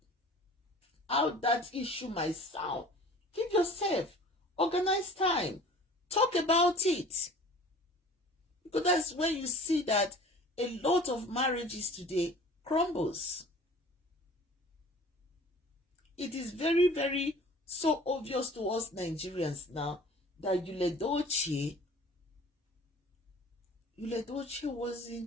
that issue might sound. Give yourself, organize time, talk about it. Because that's when you see that a lot of marriages today crumbles. It is very, very so obvious to us Nigerians now that Yul Edochie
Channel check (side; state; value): both; normal; correlation 0.46